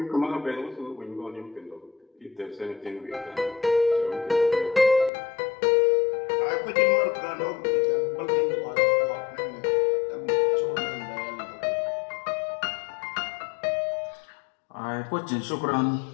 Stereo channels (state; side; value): drops out; right; at 5.1 s